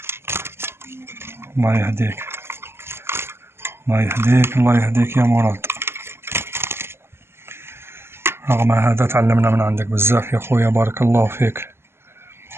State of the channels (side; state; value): left; late; 0.12 ms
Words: الله يهديك الله يهديك الله يهديك يا مراد. رغم هذا تعلمنا من عندك بزاف يا خويا، بارك الله فيك.